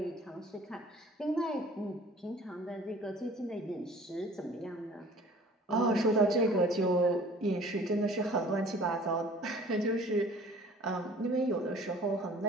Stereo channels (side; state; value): both; normal; correlation 0.49